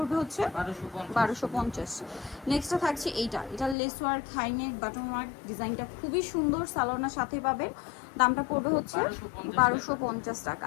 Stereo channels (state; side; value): drops out; right; at 3.8 s